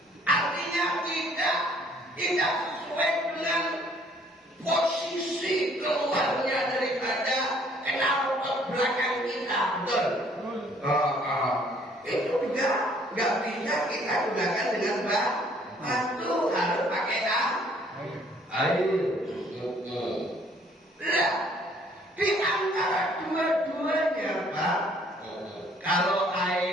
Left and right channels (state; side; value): normal; both; correlation 0.60